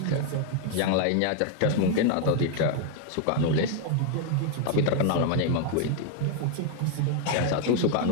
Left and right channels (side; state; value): both; different; correlation 0.00